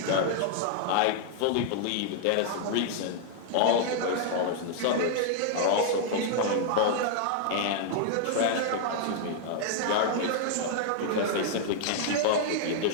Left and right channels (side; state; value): both; different; correlation -0.01